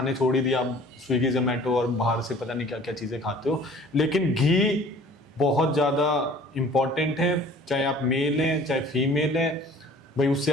छोड़ ही दिया। आप स्विगी जोमेटो और बाहर से पता नहीं क्या क्या चीज़ें खाते हो, लेकिन घी बहुत ज़्यादा इम्पॉर्टेंट है। चाहे आप मेल हैं चाहे फीमेल हैं, भाई उससे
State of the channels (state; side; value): normal; both; correlation 0.49